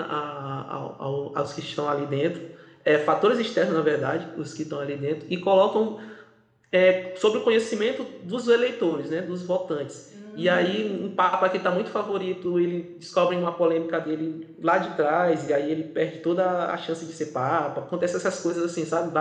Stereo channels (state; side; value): identical; both; correlation 1.00